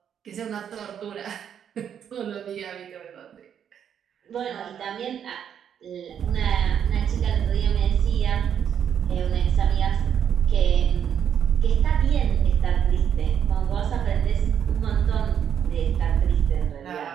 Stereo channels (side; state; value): left; quieter; 8.6 dB